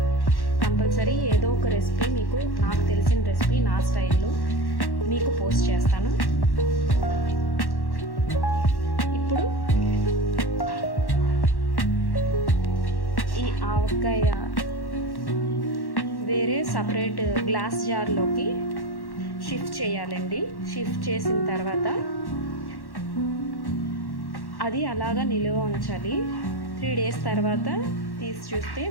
కంపల్సరీ ఏదో ఒక రెసిపీ మీకు, నాకు తెలిసిన రెసిపీ నా స్టైల్లో మీకు పోస్ట్ చేస్తాను. ఇప్పుడు ఈ ఆవకాయ వేరే సపరేట్ గ్లాస్ జార్లోకి షిఫ్ట్ చేయాలండి. షిఫ్ట్ చేసిన తర్వాత అది అలాగా నిలువ ఉంచాలి. 3 డేస్ తర్వాత తీసి చూస్తే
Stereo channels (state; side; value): late; right; 1.1 ms